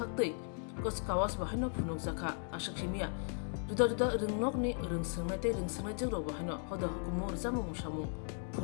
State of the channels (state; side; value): silent; right; 53 dB below the other